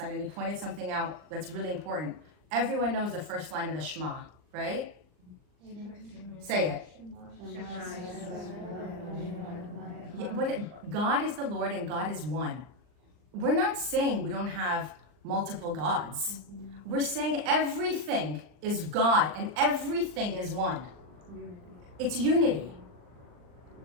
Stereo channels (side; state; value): left; late; 39 ms